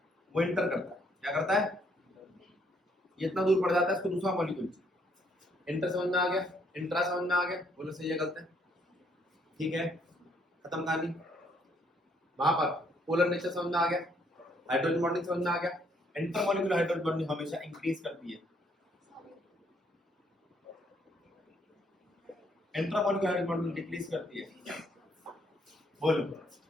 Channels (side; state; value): both; normal; correlation 0.69